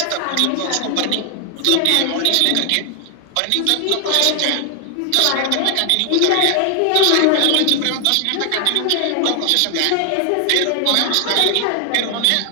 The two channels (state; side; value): different; both; correlation 0.00